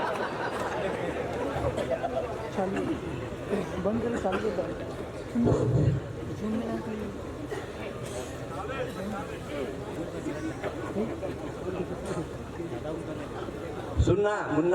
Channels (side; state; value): both; identical; correlation 1.00